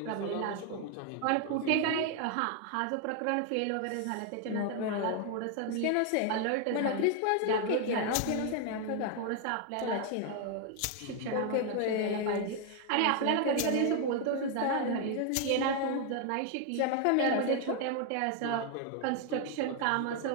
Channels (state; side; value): different; both; correlation 0.01